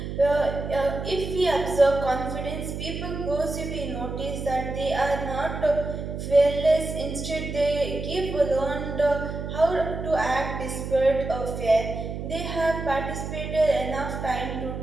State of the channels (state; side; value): noise; right; hum, 6 dB below the sound